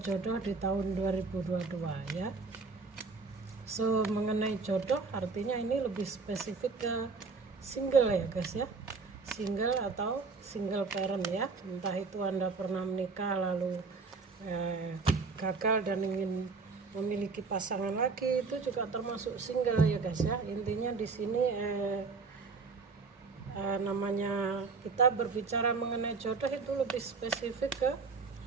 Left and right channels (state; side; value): quieter; left; 4.4 dB